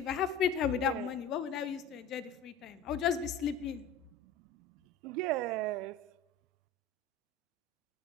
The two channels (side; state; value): right; quieter; 3.5 dB